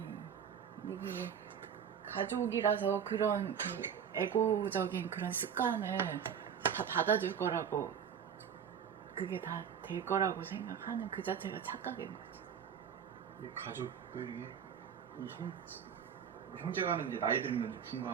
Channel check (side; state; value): left; quieter; 8.0 dB